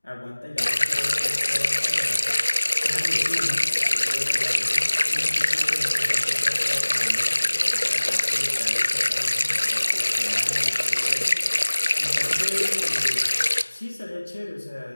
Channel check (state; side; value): inverted; both; correlation -1.00